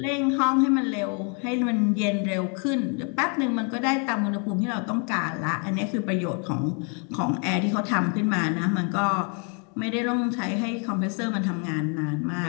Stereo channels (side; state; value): right; quieter; 38.5 dB